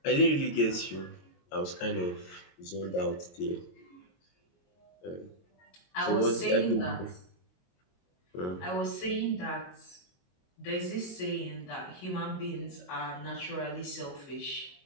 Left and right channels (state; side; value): late; right; 22 ms